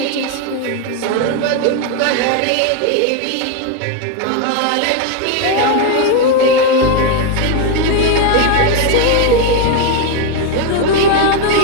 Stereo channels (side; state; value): both; different; correlation 0.01